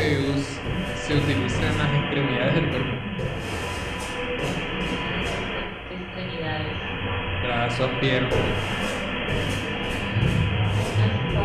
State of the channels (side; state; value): both; identical; correlation 1.00